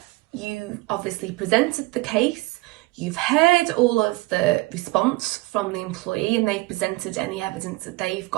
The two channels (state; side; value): quieter; left; 22.1 dB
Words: you obviously presented the case, you've heard all of the response from the employee, and they've presented any evidence that they've